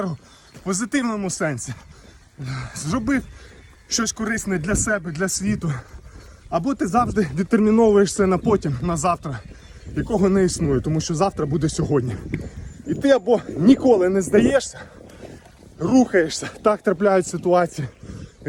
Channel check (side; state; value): both; identical; correlation 1.00